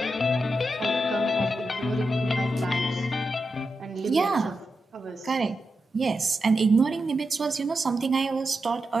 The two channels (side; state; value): both; normal; correlation 0.88